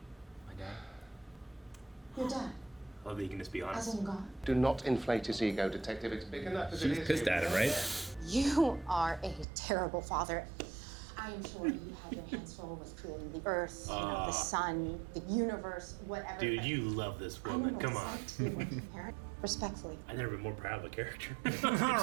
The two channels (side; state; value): left; drops out; at 9.5 s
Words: dad. Your dad, I love that you can just be honest. as in God. do not inflate his ego, detective. It's big enough as it She's is. pissed at him, right? You are a terrible father. I am sure you have your hands full with creating the earth, the sun, the universe, whatever. Dude, but you love this I know woman. what Come it's on. like to be a working parent. Respectfully. I've never been more proud of a character.